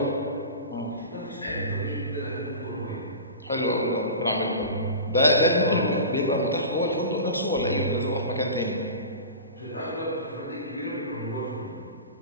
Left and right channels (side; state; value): both; inverted; correlation -0.33